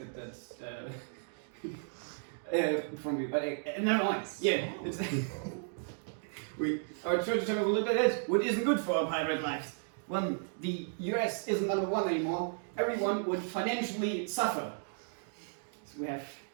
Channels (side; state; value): left; silent; digital silence